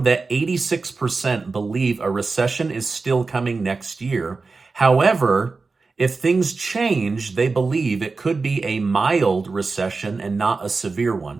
that 86% believe a recession is still coming next year. However, if things change, they believe it could be a mild recession and not a severe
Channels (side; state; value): left; quieter; 4.1 dB